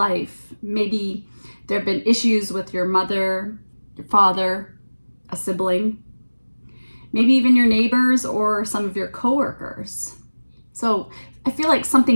Maybe there have been issues with your mother, your father, a sibling, maybe even your neighbors or some of your coworkers. So I feel like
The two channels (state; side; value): inverted; both; correlation -1.00